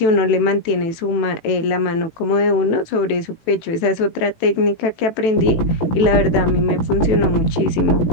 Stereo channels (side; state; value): right; late; 18 ms